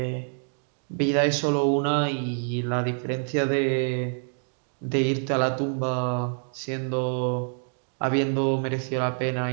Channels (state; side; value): silent; left; digital silence